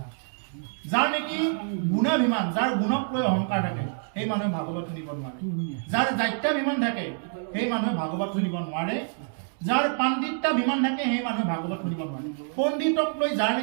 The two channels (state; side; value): silent; left; 60 dB below the other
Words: যাৰ নেকি গুণাভিমান যাৰ গুণক লৈ অহংকাৰ থাকে সেই মানুহে ভাগৱত শুনিব নোৱাৰে যাৰ দায়িত্বাভিমান থাকে সেই মানুহে ভাগৱত শুনিব নোৱাৰে যাৰ পাণ্ডিত্যাভিমান থাকে সেই মানুহে ভাগৱত শুনিব নোৱাৰে পণ্ডিতক লৈ যাৰ